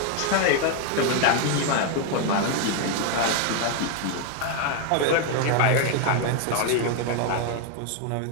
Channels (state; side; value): different; both; correlation 0.00